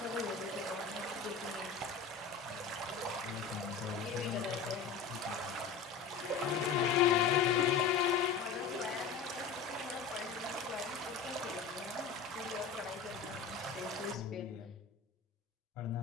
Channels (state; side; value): quieter; right; 5.7 dB